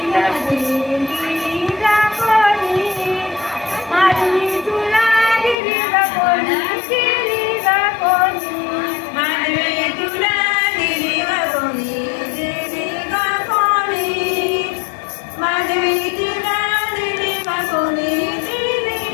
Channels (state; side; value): drops out; right; at 5.6 s